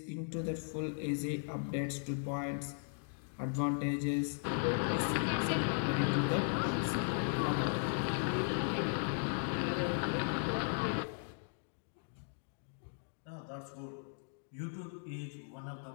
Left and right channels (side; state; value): right; silent; digital silence